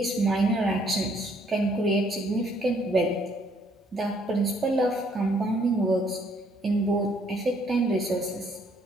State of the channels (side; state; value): both; normal; correlation 0.66